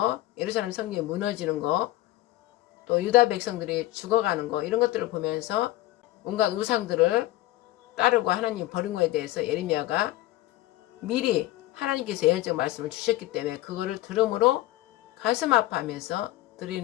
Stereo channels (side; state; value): right; quieter; 16.4 dB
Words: 예루살렘 성경이 무너지는 거, 또 유다 백성들이 죽어가는 거 이런 것들을 보면서 온갖 우상들을 따르고 하나님 버린 거에 대해서 예레미야가 미리 하나님께서 예언적 말씀을 주셨기 때문에 그거를 들음으로 가슴 아파하면서